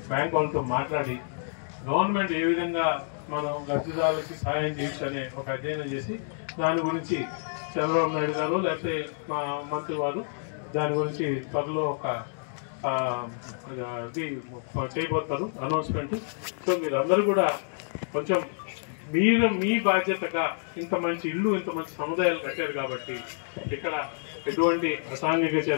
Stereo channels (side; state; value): right; silent; digital silence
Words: బ్యాంక్ వాళ్ళతో మాట్లాడి గవర్నమెంట్ ఏ విధంగా మనం లబ్ధిదారులకి సహాయం చేయొచ్చనే ఒక అధ్యయనం చేసి దాని గురించి చంద్రబాబు నాయుడు గారు లేకపోతే మా మంత్రి వారు దాని గురించి త్వరలో ఒక ఇది చేయబోతారు అనౌన్స్మెంట్. సో మీరు అందరూ కూడా కొంచెం మీ బాధ్యతగా ఇంత మంచి ఇల్లు, ఇంత మంచి సముదాయాలు కట్టారు కాబట్టి ఇక్కడ ఎటువంటి అసాంఘిక